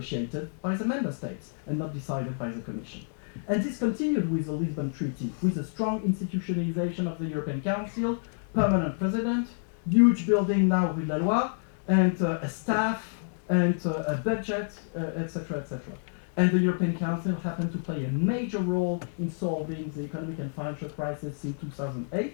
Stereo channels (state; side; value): silent; right; digital silence